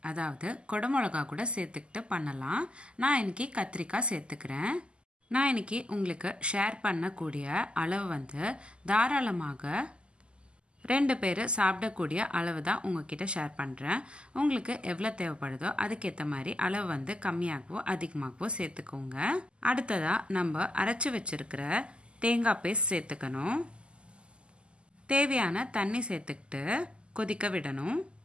அதாவது கொடமிளகா கூட சேர்த்துக்கிட்டு பண்ணலாம். நான் இன்னைக்கு கத்திரிக்காய் சேர்த்துக்கிறேன். நான் இன்னைக்கு உங்களுக்கு ஷேர் பண்ணக்கூடிய அளவு தாராளமாக 2 பேர் சாப்பிடக்கூடிய அளவு தான் உங்ககிட்ட ஷேர் பண்ணுறேன். உங்களுக்கு எவ்வளோ தேவைப்படுதோ அதுக்கேற்ற மாதிரி அளவு கம்மியாகவோ அதிகமாகவோ சேர்த்துக்கோங்க. அடுத்ததாக நம்ம அரைச்சி வச்சிருக்கிற தேங்காய் பேஸ்ட் சேர்த்துக்கணும். தேவையான தண்ணி சேர்த்துக்கிட்டு கொதிக்க விடணும்.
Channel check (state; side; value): late; left; 0.051 ms